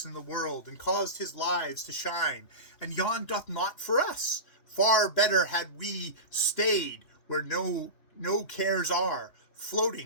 in the world, and caused his lives to shine, and Yan doth naught for us. Far better had we stayed where no cares are,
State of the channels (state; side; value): late; right; 2.9 ms